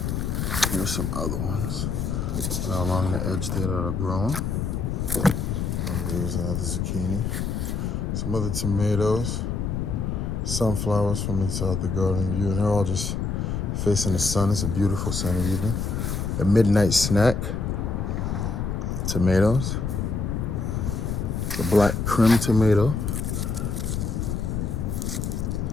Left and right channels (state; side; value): noise; left; rumble, 1 dB below the sound